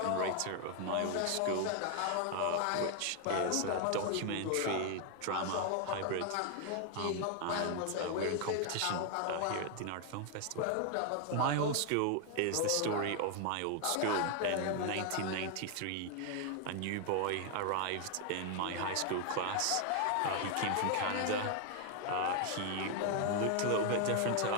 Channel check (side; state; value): both; different; correlation 0.00